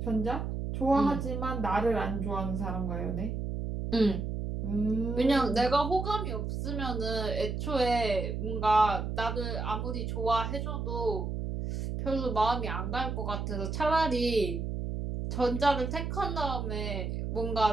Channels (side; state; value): right; noise; hum, 3 dB below the sound